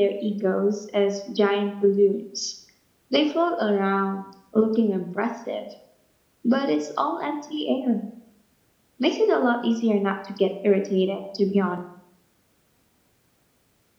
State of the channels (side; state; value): both; identical; correlation 1.00